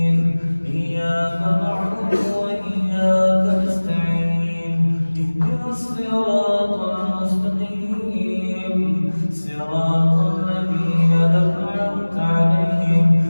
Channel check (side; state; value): both; inverted; correlation -1.00